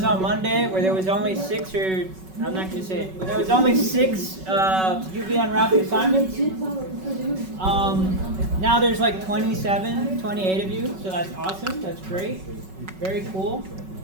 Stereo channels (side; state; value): left; late; 5.3 ms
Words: on Monday, where there was only six, or I'm not gonna say it, but there was only six UV unwrapped assignments. Now there's like 27, 28 of you, so that's awesome. That's great. Very cool.